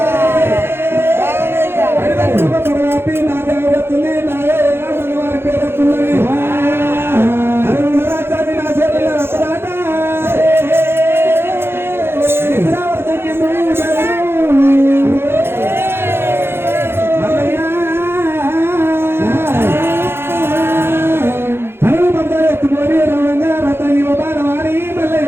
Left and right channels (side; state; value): left; late; 0.11 ms